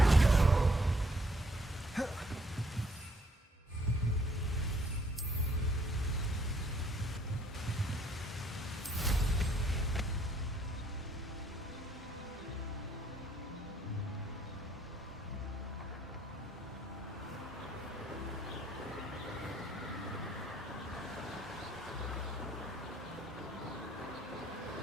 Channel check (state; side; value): normal; both; correlation 0.66